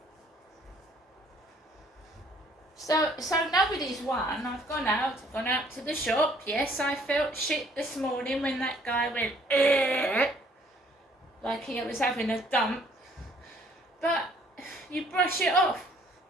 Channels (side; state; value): both; normal; correlation 0.60